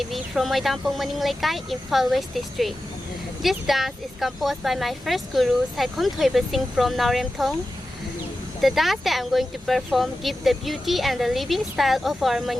from Moidampong Maninglaikai, Imphal West District. This dance is composed by my first guru, Saikhom Thoiba Singh from Nauremthong. The dance that I'm going to perform gives the beauty and the living style of our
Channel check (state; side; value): normal; both; correlation 0.93